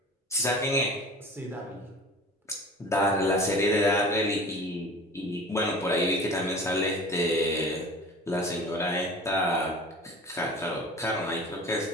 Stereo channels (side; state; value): both; normal; correlation 0.40